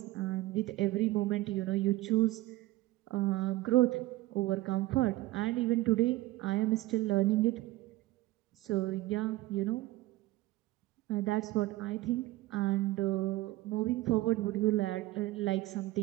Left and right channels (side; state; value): left; quieter; 17.5 dB